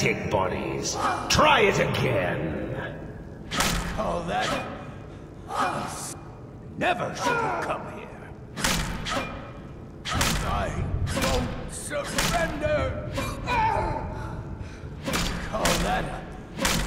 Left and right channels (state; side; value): identical; both; correlation 1.00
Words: bodies. Try it again. Call that... Never should have come here. I won't surrender. Call that